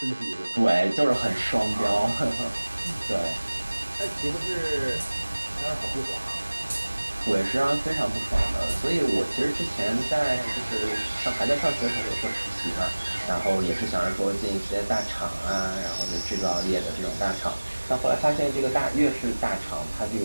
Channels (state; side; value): inverted; both; correlation -1.00